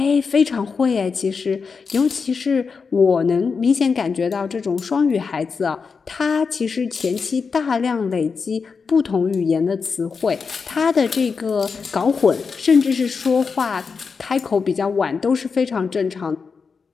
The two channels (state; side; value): quieter; right; 5.2 dB